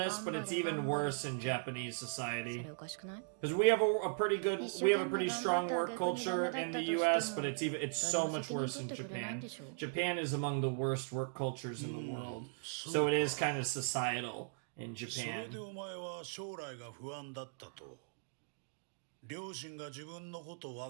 but it's even worse in Japanese society. Because we have a pretty strong work culture in the US, but it's so much worse in Japan. Japan is among the worst work cultures in the world. So it is kind of societal in それ Japan. でお前は将来が不安だったと。両親が自分のこと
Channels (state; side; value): silent; left; digital silence